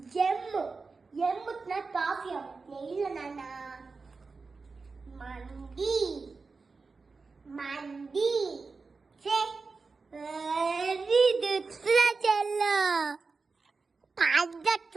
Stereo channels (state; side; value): quieter; left; 4.3 dB